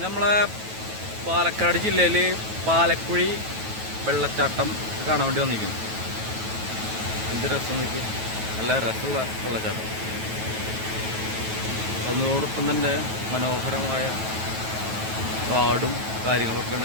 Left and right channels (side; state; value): left; late; 9.2 ms